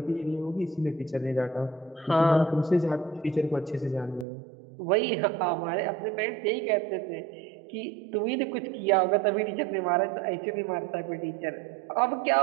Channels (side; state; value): left; drops out; at 4.2 s